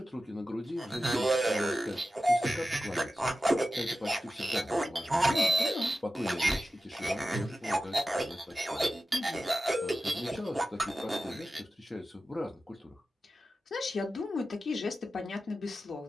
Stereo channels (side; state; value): both; normal; correlation 0.93